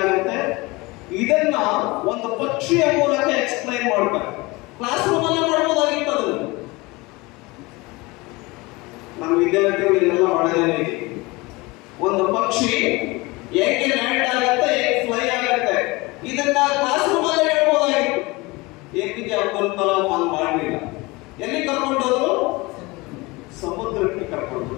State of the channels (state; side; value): quieter; right; 23.5 dB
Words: ಆಗುತ್ತೆ, ಇದನ್ನ ಒಂದು ಪಕ್ಷಿಯ ಮೂಲಕ ಎಕ್ಸ್ಪ್ಲೈನ್ ಮಾಡ್ತಾರೆ. ಕ್ಲಾಸ್ ರೂಮ್ ಅಲ್ಲೇ ಮಾಡ್ಬೋದಾಗಿತ್ತು ಅದನ್ನು. ನಮ್ಮ ವಿದ್ಯಾರ್ಥಿಗಳು ಇದೆಲ್ಲ ಮಾಡೋದೇ. ಒಂದು ಪಕ್ಷಿ ಹೇಗೆ ಲ್ಯಾಂಡ್ ಆಗುತ್ತೆ, ಹೇಗೆ ಫ್ಲೈ ಆಗುತ್ತೆ, ಇದನ್ನ ಕ್ಲಾಸ್ ರೂಮ್ ಅಲ್ಲೇ ಹೇಳ್ಬೋದಾಗಿತ್ತು. APJ ಅಬ್ದುಲ್ ಕಲಾಂ ಹಂಗ್ ಮಾಡಲಿಲ್ಲ. ಎಲ್ಲಿ ಕರ್ಕೊಂಡೋದ್ರು? ಸಮುದ್ರಕ್ಕೆ ಕರ್ಕೊಂಡು.